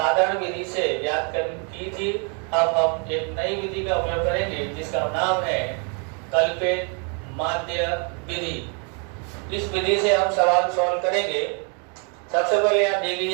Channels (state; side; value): quieter; left; 37.4 dB